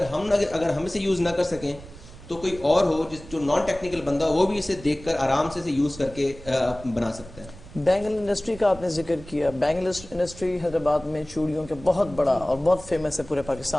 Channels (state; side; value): noise; right; rumble, 18 dB below the sound